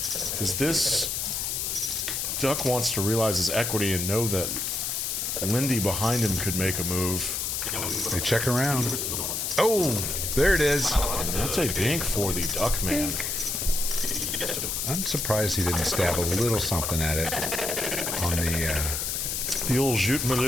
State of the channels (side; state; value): left; noise; hiss, 1 dB below the sound